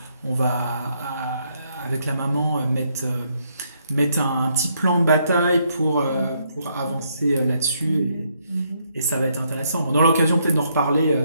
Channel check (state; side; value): inverted; both; correlation -0.73